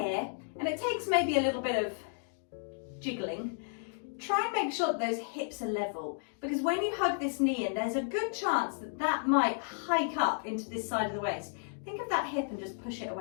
and it takes maybe a little bit of jiggling, try and make sure that those hips are level, because when you hug this knee in, there's a good chance that that might hike up into this side of the waist. Think of that hip and just push it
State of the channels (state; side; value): silent; right; digital silence